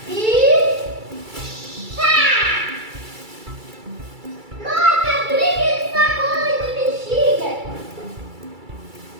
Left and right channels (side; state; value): left; late; 2.3 ms